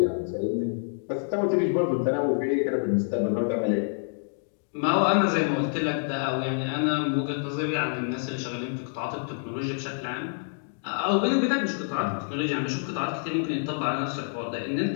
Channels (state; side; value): silent; right; digital silence